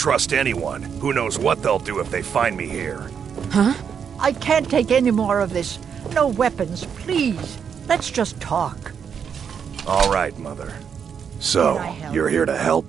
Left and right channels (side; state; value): left; quieter; 7.3 dB